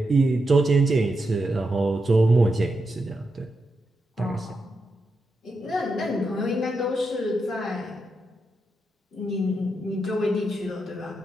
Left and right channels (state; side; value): normal; both; correlation 0.86